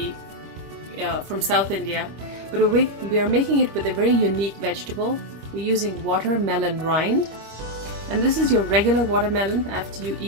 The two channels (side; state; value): left; late; 25 ms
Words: from South India, but we are making it with a very unique vegetable. We're using watermelon rind, and this is your regular watermelon. After you